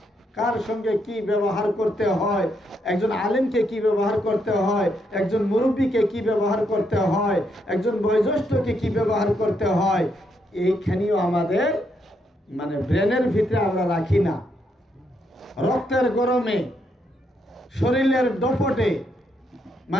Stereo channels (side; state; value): both; normal; correlation 0.77